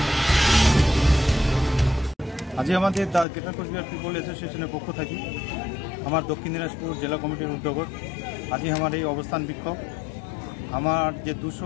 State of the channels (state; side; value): drops out; right; at 3.2 s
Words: আজ আমাদের গ্রেটার কোচবিহার পিপল অ্যাসোসিয়েশনের পক্ষ থেকে আমার দক্ষিণ দিনাজপুর জেলা কমিটির উদ্যোগত আজ আমার এই অবস্থান বিক্ষোভ। আমার যে